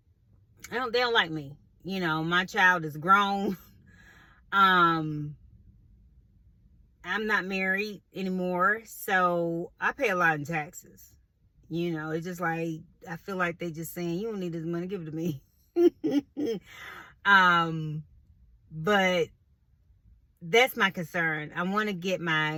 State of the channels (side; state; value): both; identical; correlation 1.00